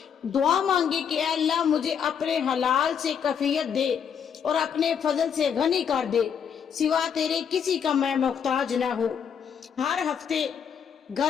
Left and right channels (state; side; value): quieter; right; 7.5 dB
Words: دعا مانگے کہ اے اللہ مجھے اپنے حلال سے کفیت دے اور اپنے فضل سے غنی کر دے، سوا تیرے کسی کا میں محتاج نہ ہو۔ ہر ہفتے